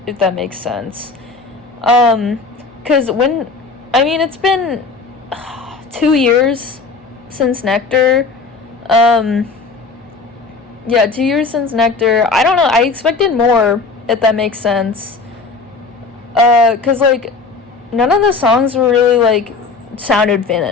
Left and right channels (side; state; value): right; quieter; 4.2 dB